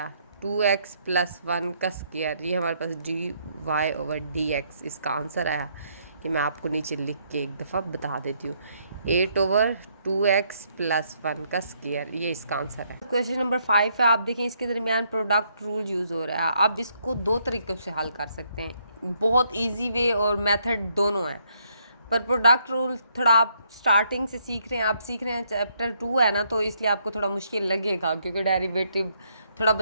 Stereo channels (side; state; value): both; inverted; correlation -0.72